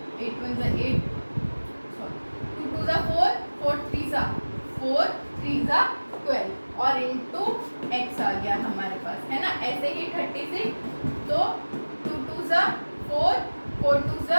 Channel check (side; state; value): both; inverted; correlation -1.00